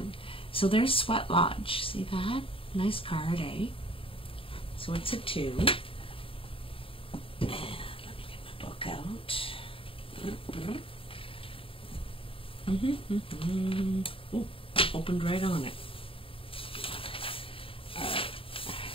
So there's Sweat Lodge. See that? Nice card, eh? So it's a 2. And let me get my book out. Ooh, opened right on it.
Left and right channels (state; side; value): late; right; 0.26 ms